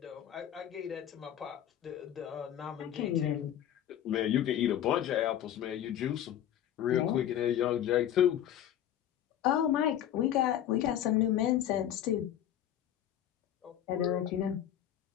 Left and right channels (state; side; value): quieter; right; 11.0 dB